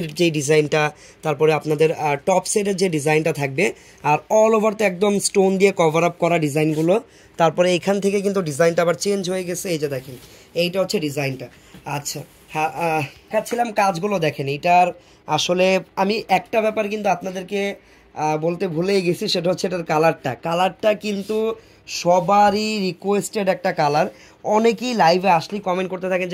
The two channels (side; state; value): both; identical; correlation 1.00